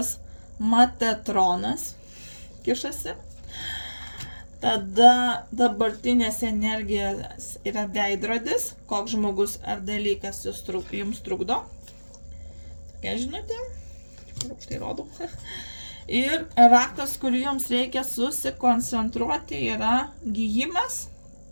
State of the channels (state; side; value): inverted; both; correlation -1.00